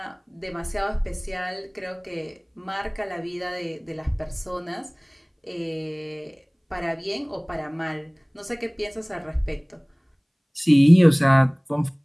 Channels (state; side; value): identical; both; correlation 1.00